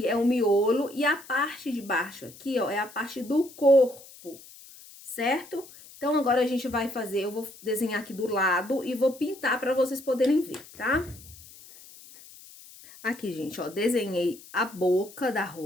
é o miolo e a parte de baixo aqui, ó, é a parte do corpo, certo? Então, agora a gente vai fazer, eu vou desenhar aqui do lado e vou pintar para vocês poderem ver, tá? Aqui, gente, ó, desenhei a boca da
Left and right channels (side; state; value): left; noise; hiss, 20 dB below the sound